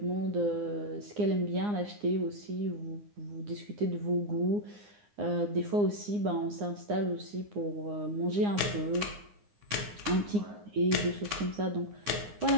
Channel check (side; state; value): left; late; 9.7 ms